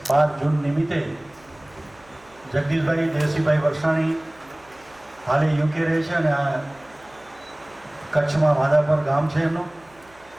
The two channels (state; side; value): noise; right; hum, 29 dB below the sound